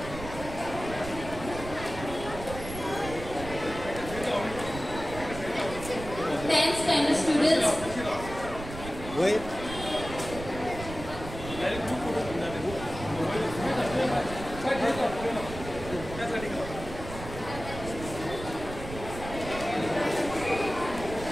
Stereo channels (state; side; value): noise; right; rumble, 10 dB below the sound